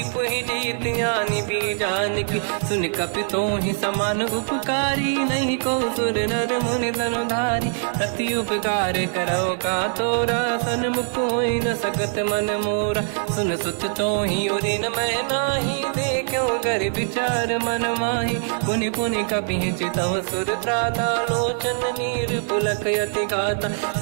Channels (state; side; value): silent; left; digital silence